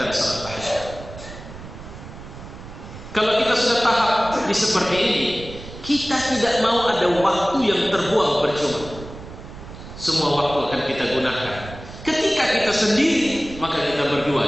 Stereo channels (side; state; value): right; noise; rumble, 14 dB below the sound